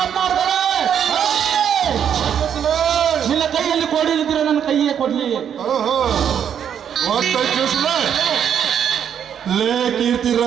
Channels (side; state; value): left; quieter; 8.7 dB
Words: ನಿನ್ನ ಕೈಯಲ್ಲಿ ಕೊಡಿದ್ರೆ ನನ್ನ ಕೈಯೇ ಕೊಡ್ಲಿ. ಲೇ ಕೀರ್ತಿ